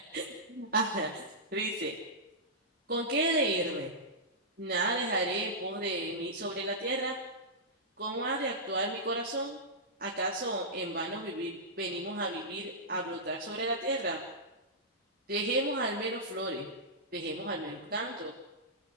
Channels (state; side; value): normal; both; correlation -0.14